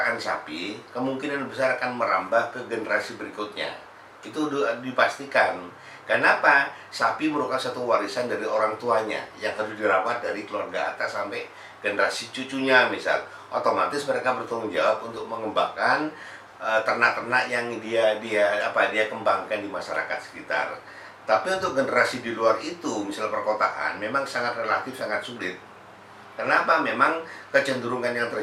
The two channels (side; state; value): both; identical; correlation 1.00